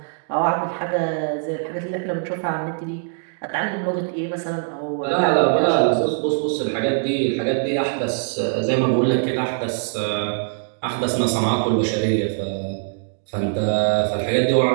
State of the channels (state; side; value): silent; left; digital silence